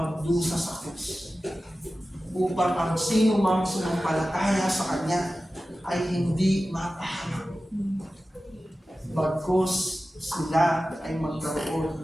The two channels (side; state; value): both; normal; correlation 0.95